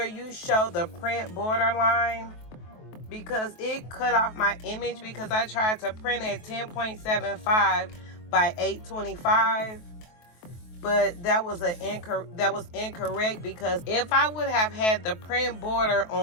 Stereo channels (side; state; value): right; late; 23 ms